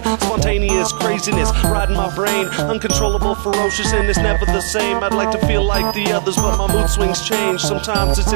Spontaneous craziness riding my brain, uncontrollable, ferocious, and it's never the same. I'd like to feel like the others, but my mood swings change. Sometimes it's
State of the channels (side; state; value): left; silent; digital silence